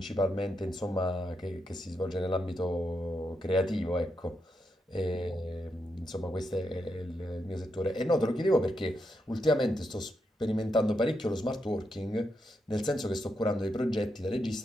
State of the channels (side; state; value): both; normal; correlation 0.83